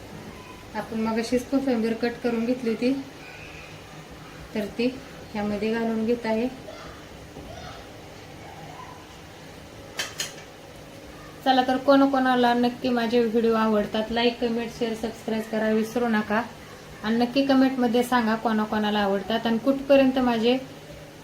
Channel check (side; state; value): both; identical; correlation 1.00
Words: आपण मग अशीच कोथिंबीर कट करून घेतली होती, तर ती ह्यामध्ये घालून घेत आहे. चला तर कोणाला नक्की माझे व्हिडिओ आवडतात लाईक कमेंट शेअर सबस्क्राईब करा विसरू नका. आणि नक्की कमेंटमध्ये सांगा कोणाला आवडतात आणि कुठपर्यंत माझे